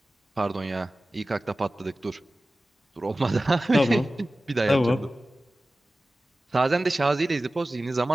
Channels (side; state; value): both; normal; correlation 0.96